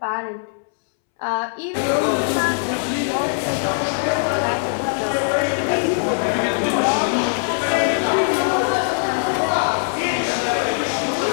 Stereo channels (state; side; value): silent; right; 65 dB below the other